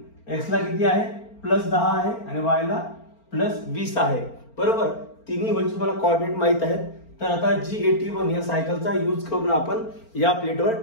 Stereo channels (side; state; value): right; late; 4.4 ms